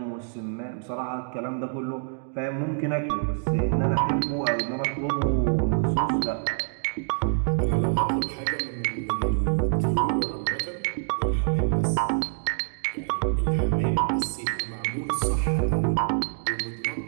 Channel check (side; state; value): left; silent; 61 dB below the other